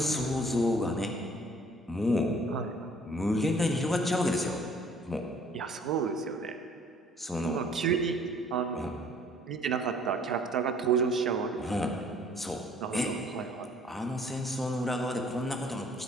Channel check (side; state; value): both; normal; correlation 0.57